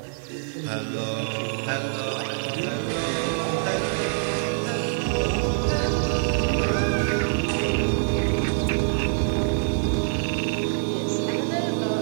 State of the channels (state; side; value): silent; left; 62 dB below the other